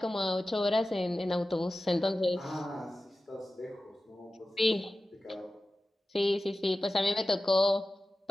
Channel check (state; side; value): normal; both; correlation 0.95